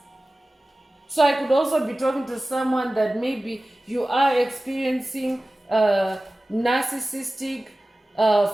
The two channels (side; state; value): both; normal; correlation 0.97